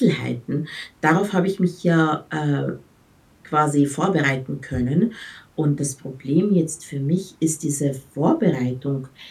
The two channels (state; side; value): identical; both; correlation 1.00